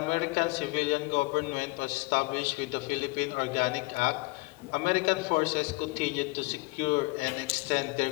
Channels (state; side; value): quieter; right; 24.3 dB